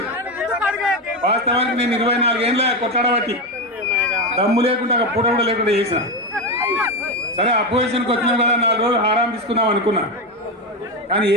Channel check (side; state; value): both; normal; correlation 0.14